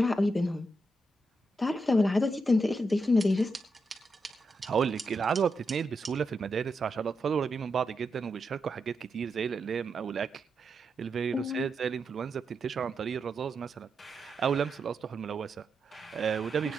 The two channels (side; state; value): both; normal; correlation 0.85